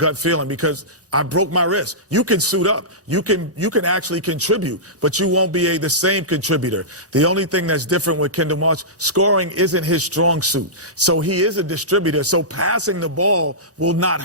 feeling because I broke my wrist. You can suit up. You can actually contribute, but you won't be the same contributor. The only thing that's different with Kendall Marshall, scoring isn't his strong suit. So he is a distributor. So passing the ball will not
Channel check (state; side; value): normal; both; correlation -0.17